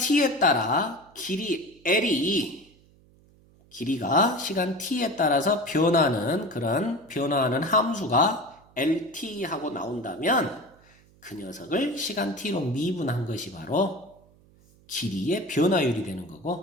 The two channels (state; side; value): noise; right; hum, 29 dB below the sound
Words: 따라 길이 L이 길이가 시간 t에 따라서 변화하는 함수가 LT하고 나온다면 그 녀석을 시간 t로 미분한 것이 바로 길이의 변화율이 되는